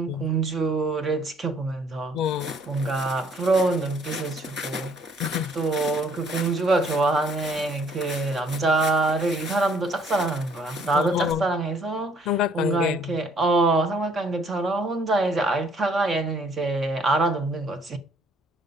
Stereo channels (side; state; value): both; normal; correlation 0.62